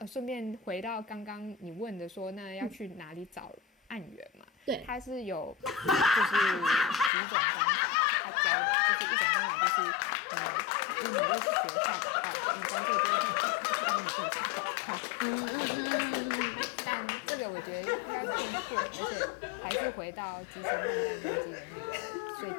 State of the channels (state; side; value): drops out; right; at 7.1 s